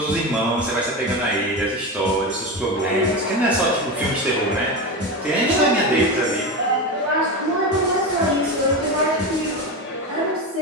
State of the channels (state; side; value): normal; both; correlation 0.20